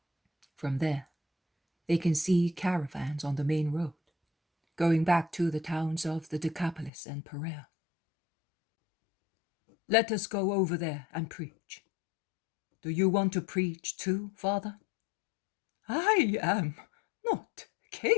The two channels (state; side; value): drops out; right; at 6.9 s